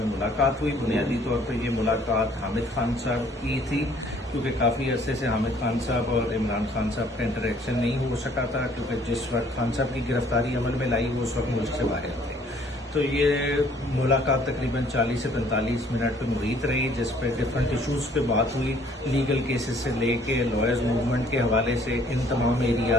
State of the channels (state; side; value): normal; both; correlation 0.59